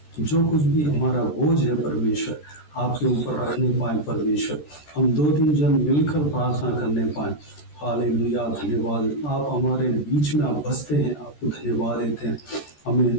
जो कुछ भी हमारा बोझ है परमेश्वर आपके ऊपर रखने पाएँ परमेश्वर। हम 2-3 जन मिलकर प्रार्थना करने पाएँ। हालेलुया, धन्यवाद। आप हमारे बीच में आप बसते हैं, आपको धन्यवाद देते हैं।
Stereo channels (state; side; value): late; right; 13 ms